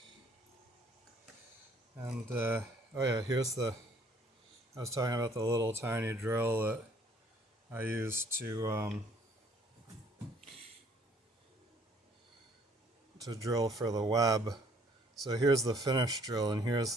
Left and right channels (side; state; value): both; normal; correlation 0.60